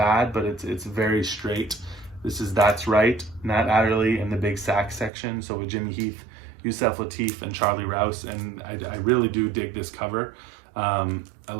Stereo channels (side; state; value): left; drops out; at 5.1 s